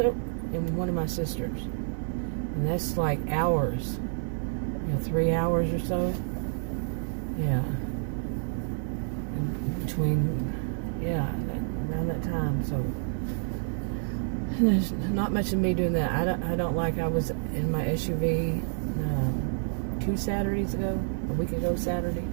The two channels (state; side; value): silent; left; digital silence